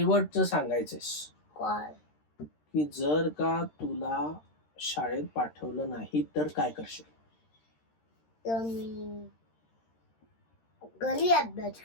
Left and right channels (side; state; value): right; late; 13 ms